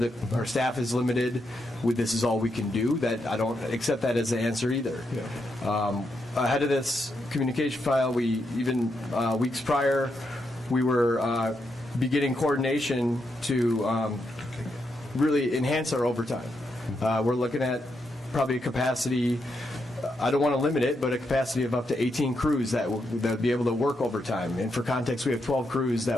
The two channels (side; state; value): both; normal; correlation 0.82